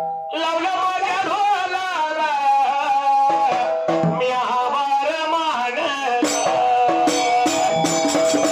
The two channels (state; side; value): identical; both; correlation 1.00